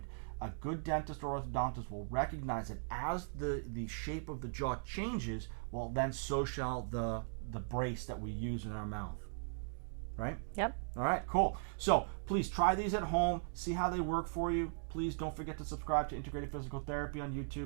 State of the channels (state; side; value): silent; left; digital silence